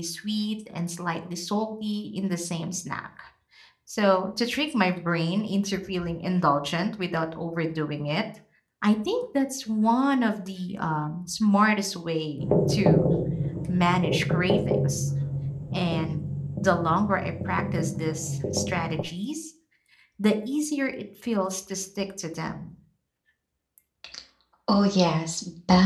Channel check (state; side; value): identical; both; correlation 1.00